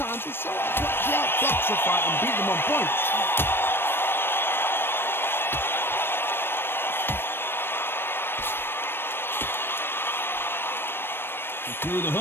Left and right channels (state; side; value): late; right; 0.10 ms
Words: it's so hard to outbox a fight and beat them on points. Through the